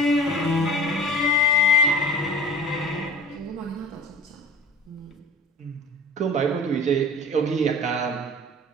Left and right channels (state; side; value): normal; both; correlation 0.39